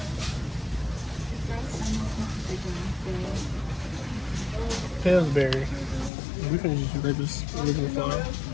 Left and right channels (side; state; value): right; drops out; at 6.1 s